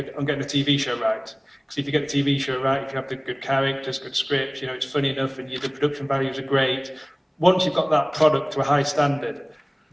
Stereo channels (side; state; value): both; identical; correlation 1.00